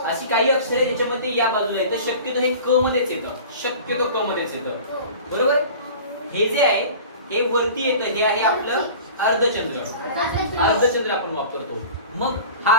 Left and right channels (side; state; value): both; inverted; correlation -0.40